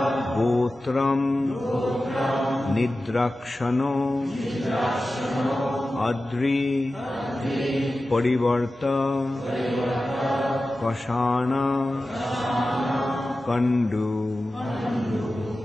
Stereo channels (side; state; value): both; normal; correlation 0.94